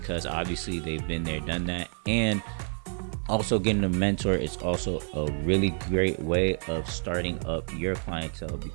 obviously they've been there, done that. And also, getting a mentor is also a really great way of starting up your clientele,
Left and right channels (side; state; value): left; silent; digital silence